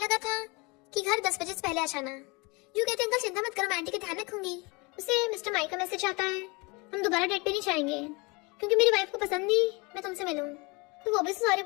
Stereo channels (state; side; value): quieter; right; 27.6 dB